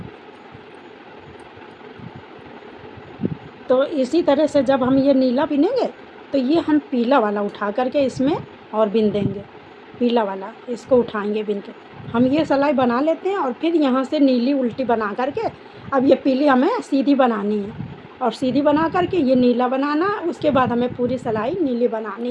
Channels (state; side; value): identical; both; correlation 1.00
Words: तो इसी तरह से जब हम ये नीला बिनेंगे, तो ये हम पीला वाला उठा करके इसमें और बिन देंगे। पीला वाला इसको उठाएंगे बिन के, हम ये सिलाई बना लेते हैं और फिर यहाँ से नीली उल्टी बना करके, अब ये पीली हमें सीधी बनानी है और सीधी बना करके ये नीला बनाना है। उसके बाद हमें पूरी सिलाई नीली